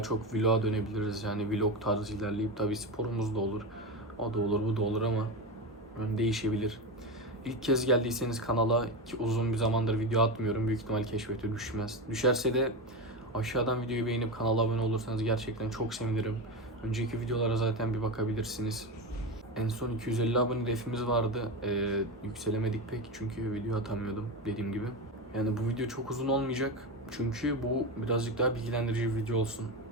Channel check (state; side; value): normal; both; correlation 0.18